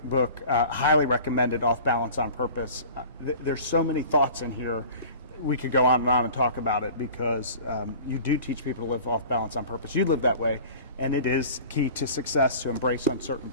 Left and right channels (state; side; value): inverted; both; correlation -0.42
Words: book, highly recommended, Off Balance on Purpose. There's so many thoughts in here. We could go on and talk about it, because you do teach people to live off balance on purpose. You live that way, and it is key to success to embrace